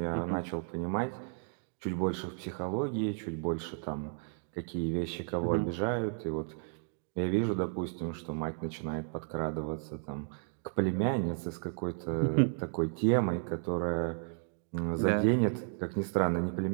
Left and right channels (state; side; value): silent; left; 56 dB below the other